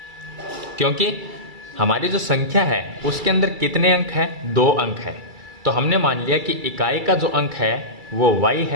क्योंकि हमारी जो संख्या है उसके अंदर कितने अंक है? 2 अंक है। तो हमने मान लिया कि इकाई का जो अंक है वो y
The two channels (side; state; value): left; late; 2.3 ms